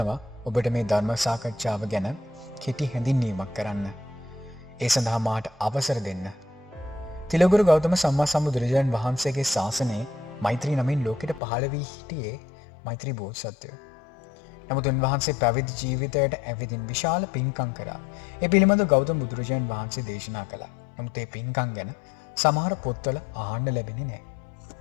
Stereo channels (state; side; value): drops out; right; at 11.4 s